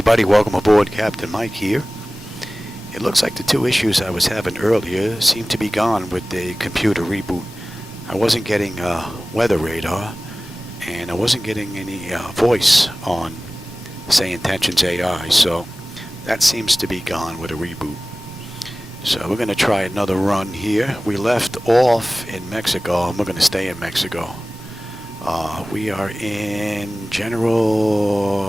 welcome aboard. Captain Mike here. It looks like the two issues I was having earlier seem to be gone with the computer reboot. I wasn't getting weather radar, and I wasn't getting any voice on SayIntentions AI, so that seems to be gone with a reboot. So we're going to try another run here. We left off in Mexico, and we're going to stay in Mexico. We are in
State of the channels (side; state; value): both; normal; correlation 0.97